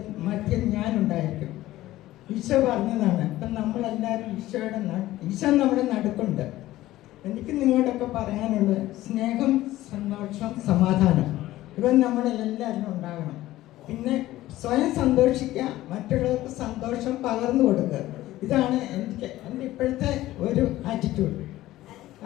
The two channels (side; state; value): right; quieter; 15.8 dB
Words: മധ്യം ഞാനുണ്ടായിരിക്കും. ഈശോ പറഞ്ഞതാണ്. അപ്പം നമ്മളെല്ലാവരും ഈശോ നമ്മുടെ നടുക്കുണ്ട്. എനിക്ക് നിങ്ങളോടൊക്കെ പറയാനുള്ളത് സ്നേഹം, സന്തോഷം, സമാധാനം ഇവ നമ്മളെല്ലാവരും ഉണ്ടാകണം. പിന്നെ സ്വയം സന്തോഷിക്കുക, മറ്റുള്ളവർക്ക് സന്തോഷം പകർന്നു കൊടുക്കുക. ഇതാണ് എൻ്റെ ഇപ്പോഴത്തെ ഒരു ആറ്റിറ്റ്യൂഡ്.